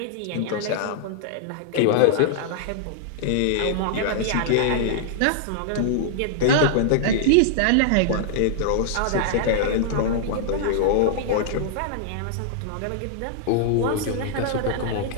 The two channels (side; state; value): both; different; correlation -0.01